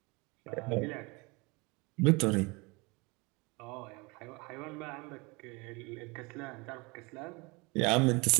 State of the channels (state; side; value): quieter; left; 26.9 dB